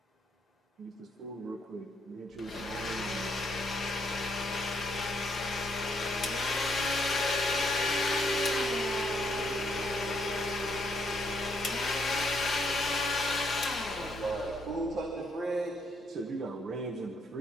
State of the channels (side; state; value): both; normal; correlation 0.73